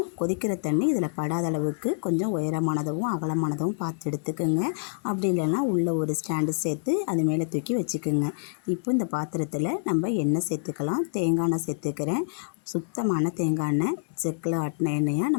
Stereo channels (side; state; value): right; silent; digital silence